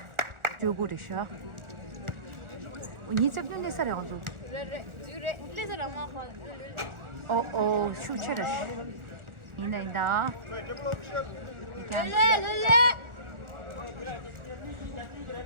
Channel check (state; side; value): late; left; 1.4 ms